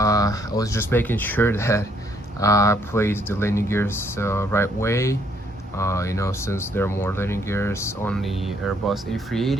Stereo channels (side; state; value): both; normal; correlation 0.69